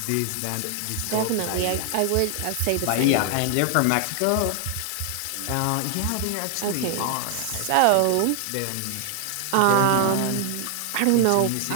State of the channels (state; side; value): different; both; correlation 0.00